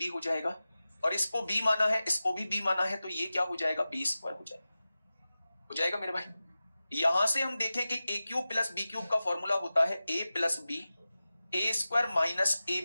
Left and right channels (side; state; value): both; inverted; correlation -0.95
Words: हो जाएगा। और इसको बी माना है, इसको भी बी माना है, तो ये क्या हो जाएगा? बी स्क्वायर हो जाएगा। हो जाएगा मेरे भाई। यहां से हम देखें कि A cube plus B cube का फॉर्मूला होता है A plus B, A square minus A